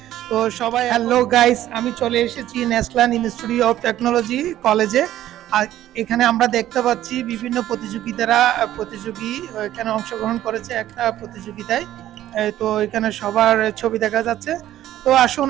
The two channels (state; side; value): quieter; left; 13.1 dB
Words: তো সবাই হ্যালো গাইস, আমি চলে এসেছি ন্যাশনাল ইনস্টিটিউট অফ টেকনোলজি কলেজে। আর এখানে আমরা দেখতে পাচ্ছি বিভিন্ন প্রতিযোগী এখানে অংশগ্রহণ করেছে একটা প্রতিযোগিতায়। তো এখানে সবার ছবি দেখা যাচ্ছে। তো আসুন